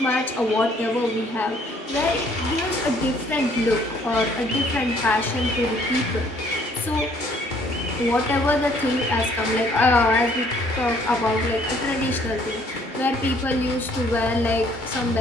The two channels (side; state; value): both; normal; correlation 0.62